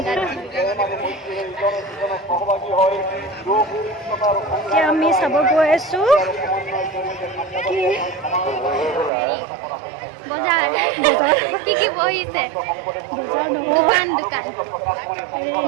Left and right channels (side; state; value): left; drops out; at 9.1 s